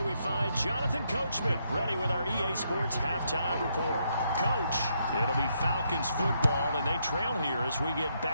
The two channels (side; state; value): both; inverted; correlation -0.77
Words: we find Jonathan Coachman, ready with our EA Sports halftime report. Coach, it'll be Falcons football, and they trail here as we get